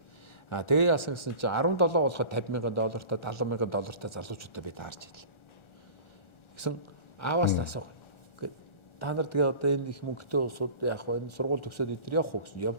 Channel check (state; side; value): late; right; 1.4 ms